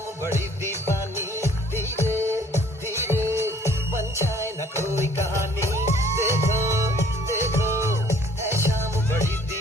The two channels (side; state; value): both; normal; correlation 0.56